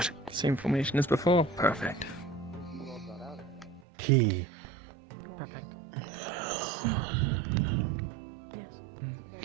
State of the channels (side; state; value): left; drops out; at 3.9 s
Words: Same formation as before. Perfect. Key. Perfect.